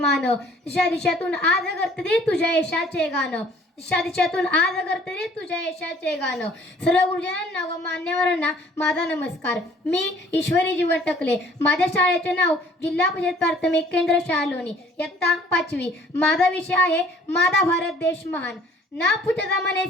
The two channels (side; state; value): both; normal; correlation 0.56